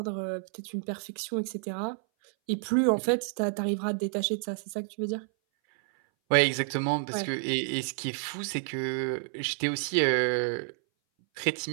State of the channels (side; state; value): left; silent; 58 dB below the other